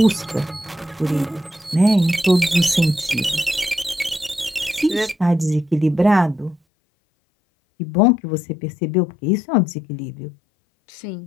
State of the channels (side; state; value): right; drops out; at 6.6 s